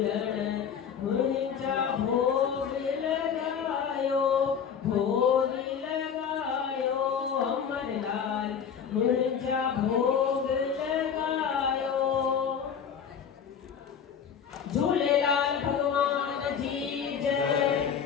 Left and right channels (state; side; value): quieter; right; 7.4 dB